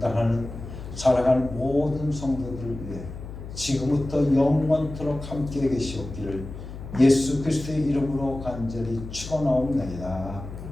사랑하는 모든 성도들을 위해 지금부터 영원토록 함께 계시옵기를 예수 그리스도의 이름으로 간절히 축원하옵나이다.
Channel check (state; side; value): noise; left; hum, 11 dB below the sound